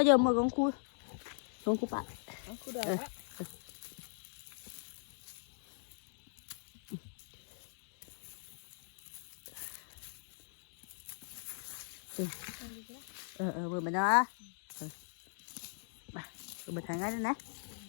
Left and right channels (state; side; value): silent; right; digital silence